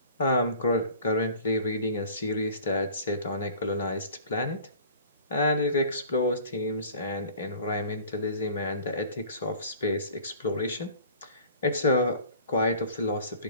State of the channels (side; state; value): both; inverted; correlation -0.46